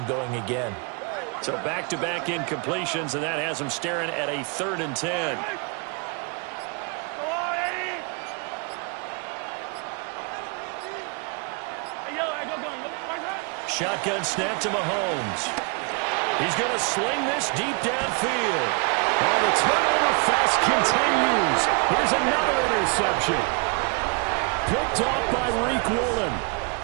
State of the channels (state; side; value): quieter; left; 33.9 dB